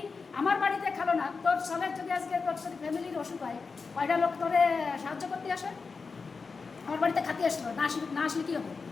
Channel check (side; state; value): right; quieter; 4.7 dB